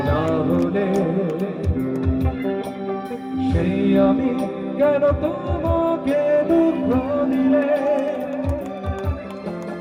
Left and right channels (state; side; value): identical; both; correlation 1.00